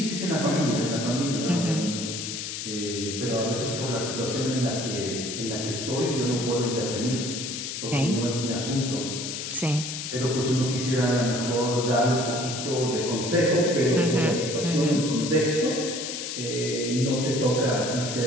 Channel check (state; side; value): noise; left; hiss, 6 dB below the sound